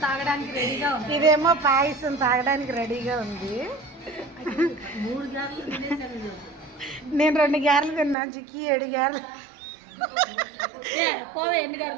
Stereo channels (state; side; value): drops out; left; at 8.2 s